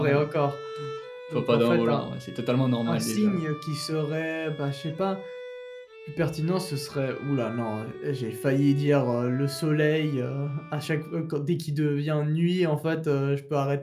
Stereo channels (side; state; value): both; identical; correlation 1.00